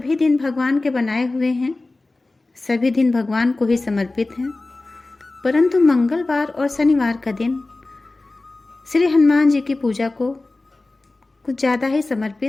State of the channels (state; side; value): quieter; right; 3.1 dB